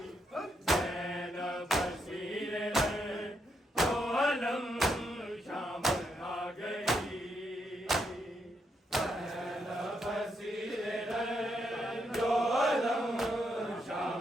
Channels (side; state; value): both; normal; correlation 0.79